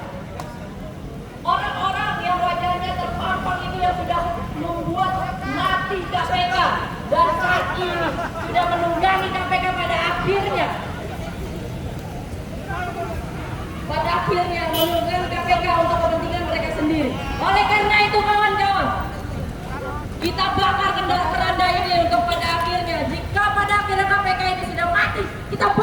orang-orang yang wajahnya terpampang itu yang sudah membuat mati KPK dan saat ini sudah menunggangi KPK pada akhirnya menunggangi KPK untuk kepentingan mereka sendiri. Oleh karena itu kawan-kawan, kita bakar keranda ini untuk pada akhirnya, jika pada akhirnya KPK ini sudah mati, kita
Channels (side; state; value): both; identical; correlation 1.00